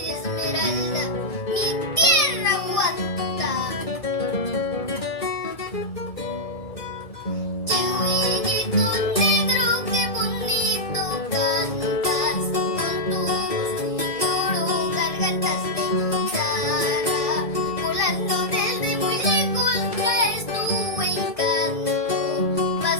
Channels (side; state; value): right; late; 1.7 ms